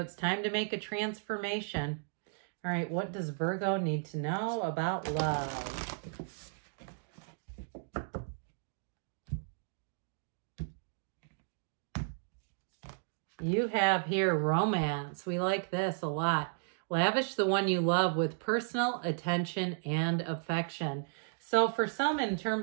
time to make a transformation. All right, what does Virgo need to know about love? You have here romance. We like this a lot. Lavish the one you love with personal attention and affection. So for some, in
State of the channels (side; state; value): left; silent; digital silence